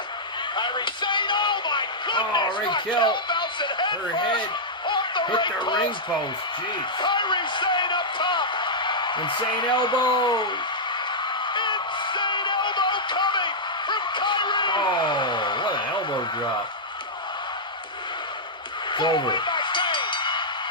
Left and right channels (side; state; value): both; normal; correlation -0.09